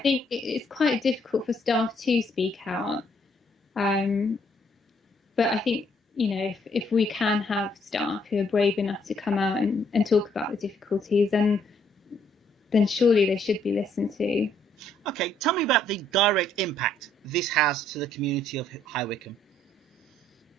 it's quite difficult for staff to speak out, but I think, you know, if we can have staff who are brave enough to come out and talk about the difficulties, then surely they should be listened to. Okay, tell me about the direct impact this has to the community of High Wycombe.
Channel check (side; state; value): both; normal; correlation 0.68